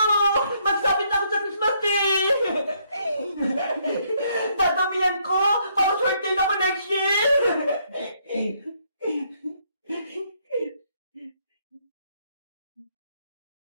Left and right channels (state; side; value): inverted; both; correlation -0.71